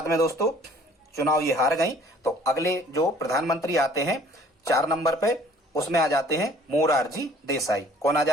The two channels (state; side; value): normal; both; correlation 0.54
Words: में दोस्तों चुनाव ये हार गई, तो अगले जो प्रधानमंत्री आते हैं 4 नंबर पे, उसमें आ जाते हैं मोरारजी देसाई। कौन आ